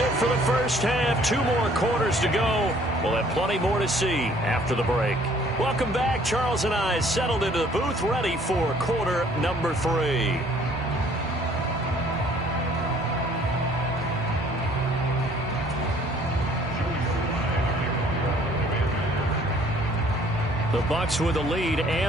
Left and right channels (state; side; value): normal; both; correlation 0.58